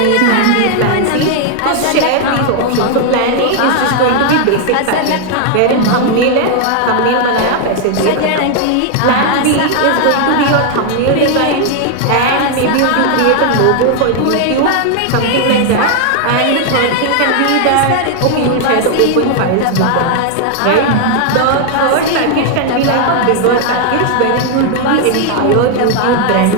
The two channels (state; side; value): different; both; correlation 0.00